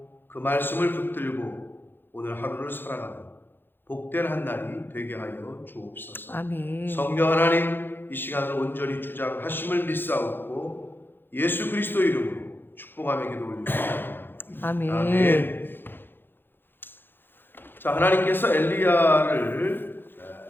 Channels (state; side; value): late; right; 0.10 ms